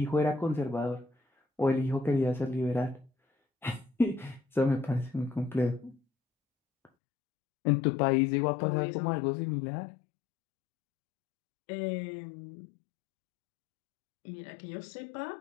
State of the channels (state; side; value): drops out; right; at 6.9 s